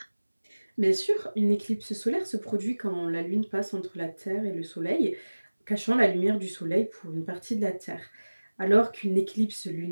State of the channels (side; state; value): both; inverted; correlation -1.00